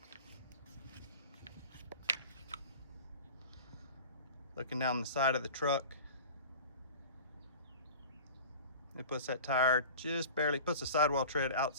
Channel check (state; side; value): inverted; both; correlation -0.38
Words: Looking down the side of the truck, it puts that tire just barely, puts the sidewall tread